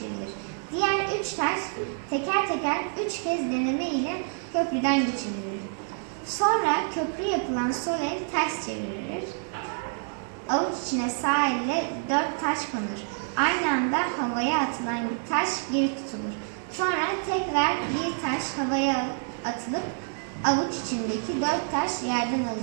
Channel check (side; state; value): left; silent; 55 dB below the other